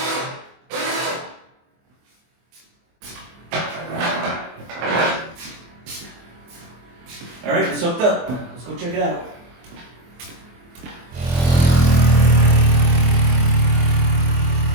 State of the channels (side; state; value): left; late; 24 ms